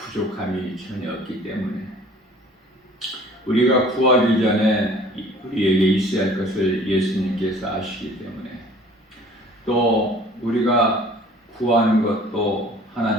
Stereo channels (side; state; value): both; normal; correlation 0.50